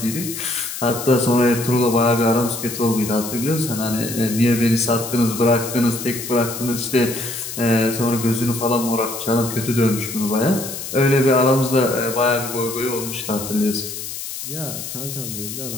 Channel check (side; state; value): left; noise; hiss, 8 dB below the sound